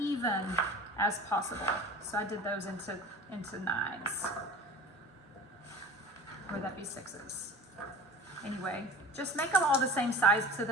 as possible. So I did those into 9s. Or that'd be 6s. Anyway, just make them all the same size so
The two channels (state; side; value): normal; both; correlation 0.38